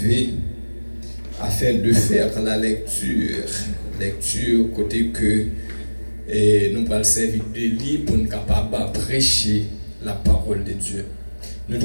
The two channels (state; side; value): inverted; both; correlation -1.00